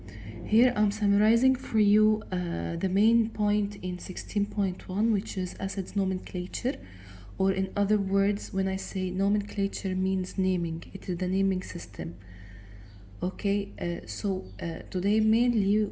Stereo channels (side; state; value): both; identical; correlation 1.00